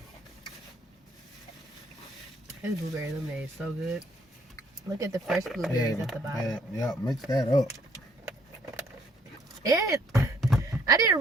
His blueberry lemonade is so good. Look at the fresh blueberries at the bottom. Yeah, mix that up. And I didn't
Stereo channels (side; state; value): both; normal; correlation 0.65